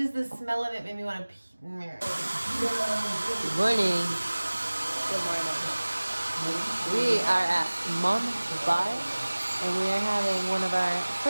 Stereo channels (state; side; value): inverted; both; correlation -1.00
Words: the smell of it made me want to pee. Good morning. Good morning. We are at Mom's Bar, and we are having one of our